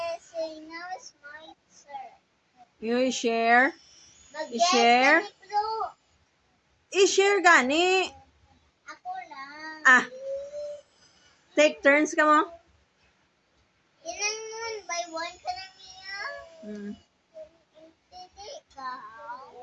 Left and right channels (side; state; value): both; identical; correlation 1.00